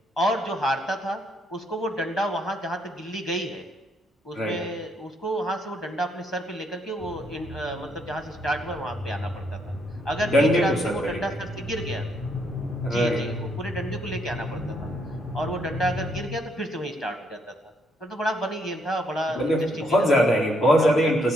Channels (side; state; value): both; normal; correlation 0.73